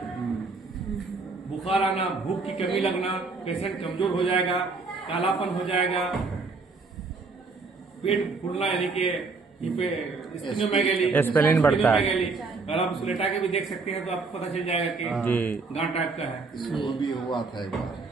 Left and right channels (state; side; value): quieter; left; 4.1 dB